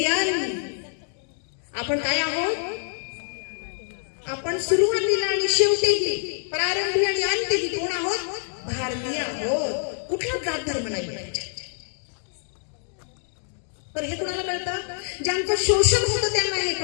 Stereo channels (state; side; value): silent; right; digital silence